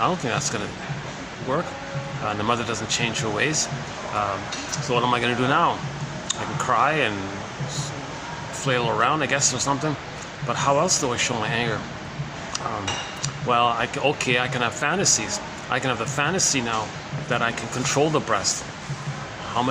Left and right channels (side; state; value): both; identical; correlation 1.00